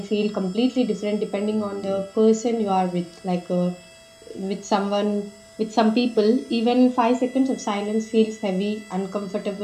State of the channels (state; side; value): identical; both; correlation 1.00